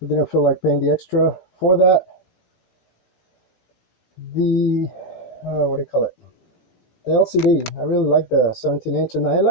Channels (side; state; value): right; late; 17 ms